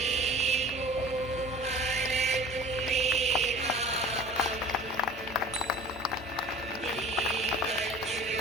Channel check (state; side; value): normal; both; correlation 0.43